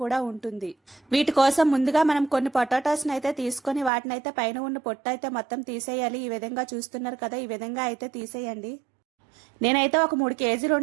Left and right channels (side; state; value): left; drops out; at 3.9 s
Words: కూడా ఉంటుంది. వీటి కోసం ముందుగా మనం కొన్ని పొటాటోస్ని అయితే తీసుకొని వాటినైతే పైన ఉన్న పొట్టు అయితే మొత్తం తీసేయాలి. ఈ విధంగా చూస్తున్నారు కదా, ఈ విధంగా అయితే తీసేయండి. నేనైతే ఒక 3 కేజీలు